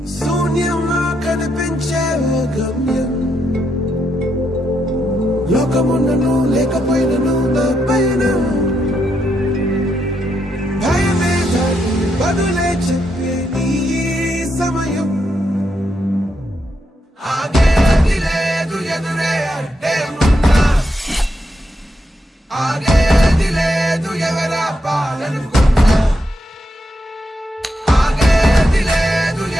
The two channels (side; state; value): both; normal; correlation 0.81